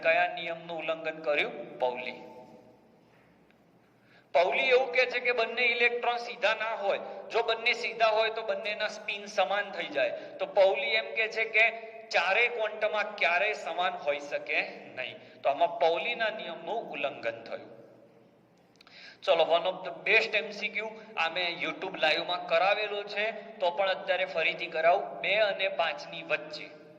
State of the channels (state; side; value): identical; both; correlation 1.00